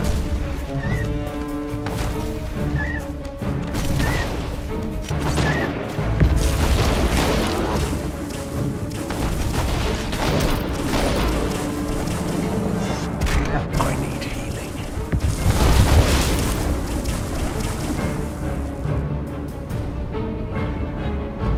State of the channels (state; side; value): identical; both; correlation 1.00